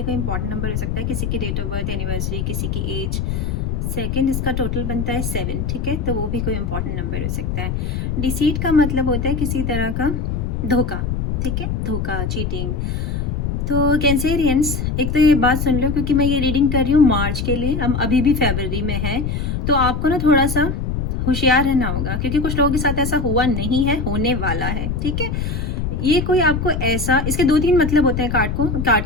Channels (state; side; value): noise; left; rumble, 2 dB below the sound